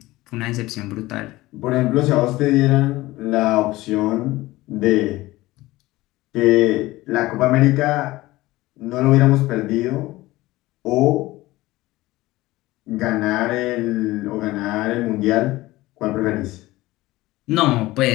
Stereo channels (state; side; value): quieter; right; 18.5 dB